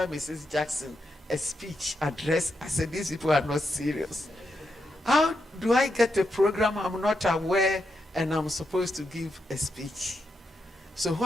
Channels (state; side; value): normal; both; correlation 0.84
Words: Mrs. Jackson, a speech address. I said, these people are not serious. How do I get a program I'm not aware and I'm supposed to give a speech? So